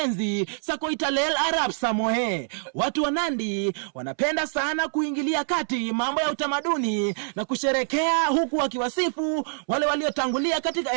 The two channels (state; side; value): silent; left; 60 dB below the other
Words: za Koitalel Arap Samoei. Watu wa Nandi wanapenda sana kuingilia kati mambo ya utamaduni na kusherekea huku wakiwasifu wale waliotangulia katika